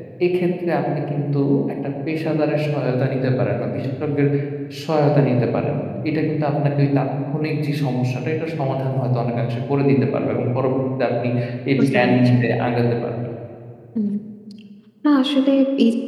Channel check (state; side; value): identical; both; correlation 1.00